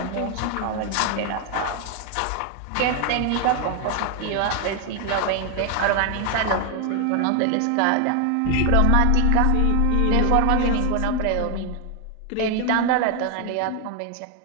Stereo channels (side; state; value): both; different; correlation 0.00